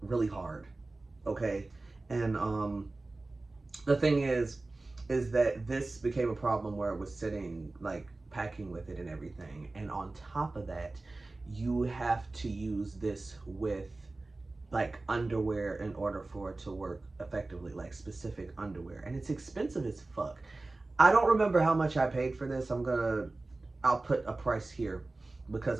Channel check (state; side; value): quieter; left; 3.2 dB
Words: really hard, okay? And the thing is that this became a problem where it was sitting, like packing with it and everything. And on top of that, you have to use this with like underwear in order for it to work effectively, like specific underwear. And it's expensive as fuck. I don't remember how much I paid for this. I'll put a price here